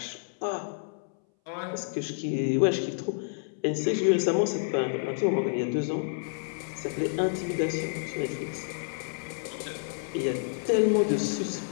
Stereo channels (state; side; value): silent; right; 58 dB below the other